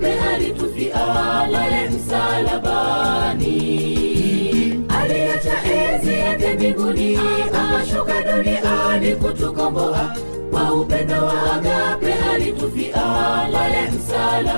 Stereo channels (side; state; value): both; inverted; correlation -1.00